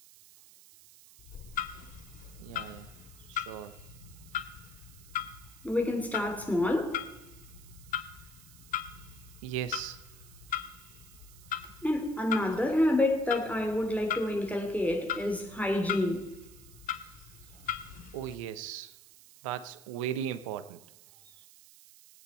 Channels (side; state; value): right; noise; hiss, 21 dB below the sound